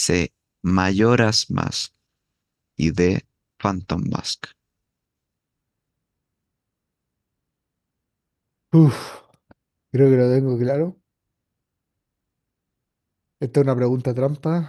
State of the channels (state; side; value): identical; both; correlation 1.00